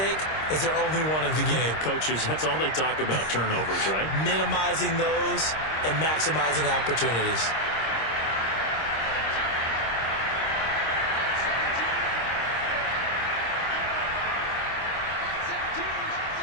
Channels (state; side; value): late; right; 26 ms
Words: is their only one of the game. Coaches, that's all they talk about, turnovers, right? Minimizing those and maximizing opportunities.